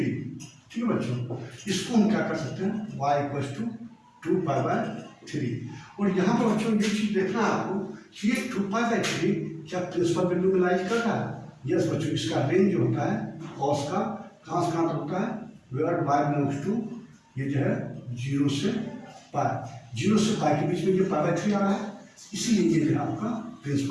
ठीक है बच्चों, इसको हम क्या कर सकते हैं y equals to 2 pi by 3। और यहाँ पर बच्चों ये चीज़ देखना है आपको कि ये 2 पाई बाय 3 क्या प्रिंसिपल वैल्यू में लाइज कर रहा है, यस बच्चों, इसका रेंज जो होता है कॉस का कहाँ से कहाँ तक होता है, वेयर वाई बिलोंग्स टू, ये जो है 0 से पाई, 0 से पाई के बीच में ये पाई बाय 3 आ रहा है, इसीलिए ये जो है आपका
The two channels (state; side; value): identical; both; correlation 1.00